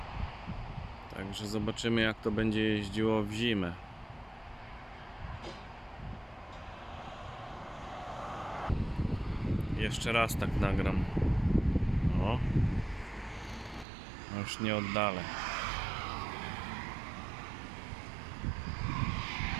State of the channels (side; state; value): left; drops out; at 13.9 s